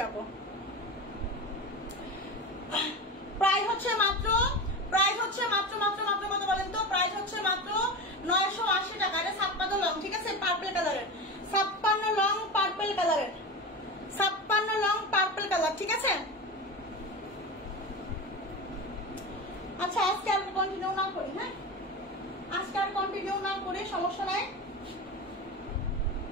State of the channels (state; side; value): normal; both; correlation 0.25